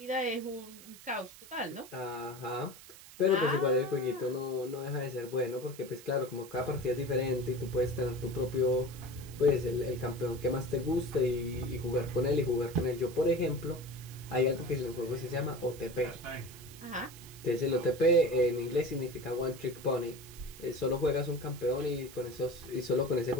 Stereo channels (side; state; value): right; noise; hiss, 18 dB below the sound